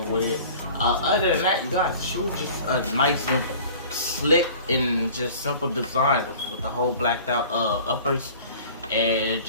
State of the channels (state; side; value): inverted; both; correlation -0.45